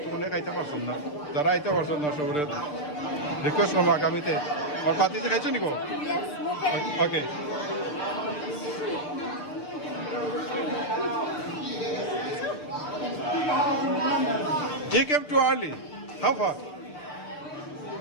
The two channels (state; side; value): late; right; 6.7 ms